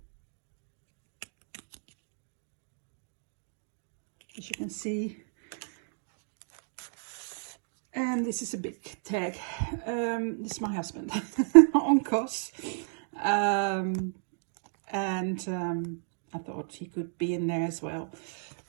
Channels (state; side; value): silent; left; digital silence